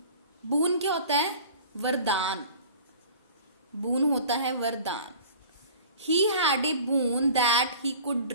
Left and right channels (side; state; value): both; inverted; correlation -0.44